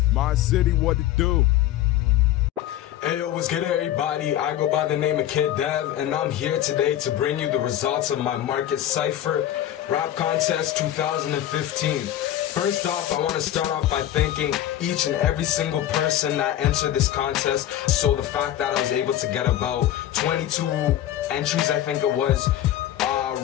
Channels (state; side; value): quieter; right; 12.3 dB